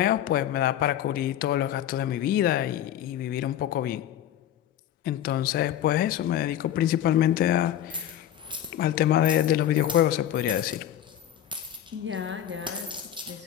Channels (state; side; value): quieter; right; 11.2 dB